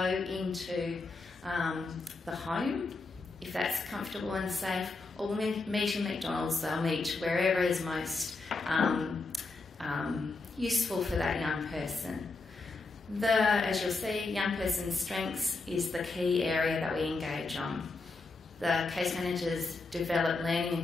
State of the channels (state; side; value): quieter; right; 3.6 dB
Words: into the home, if that's comfortable and safe, or we'll meet in McDonald's. They'll meet wherever is most useful for that young person. As you'll see, young person's strengths is the key area that we engage on. The case managers develop learning